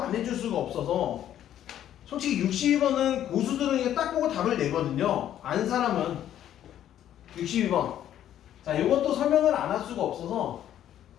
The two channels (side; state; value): right; quieter; 11.2 dB